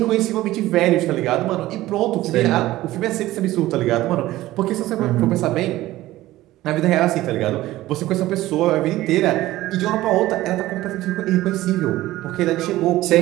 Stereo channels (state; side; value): quieter; left; 16.3 dB